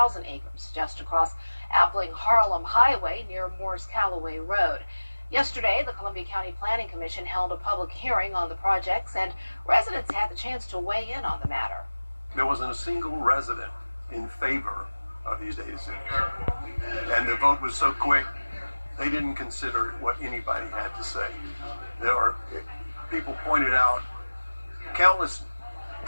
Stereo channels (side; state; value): both; inverted; correlation -1.00